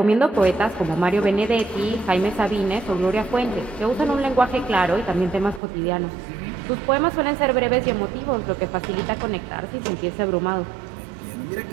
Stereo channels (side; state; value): left; drops out; at 5.6 s